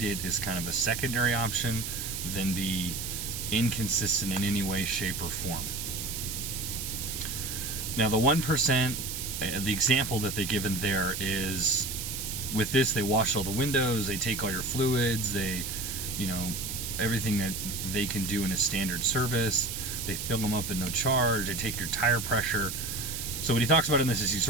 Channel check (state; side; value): noise; right; hiss, 5 dB below the sound